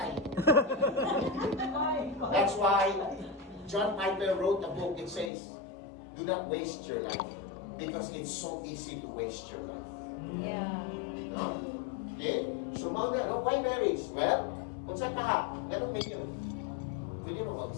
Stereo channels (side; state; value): right; drops out; at 5.3 s